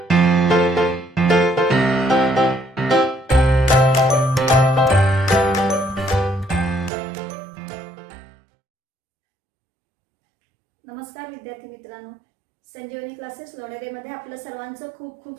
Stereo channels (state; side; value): drops out; left; at 6.9 s